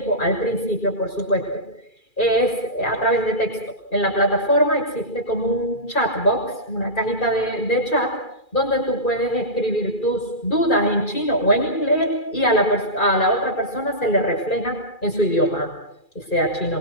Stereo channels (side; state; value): right; late; 2.4 ms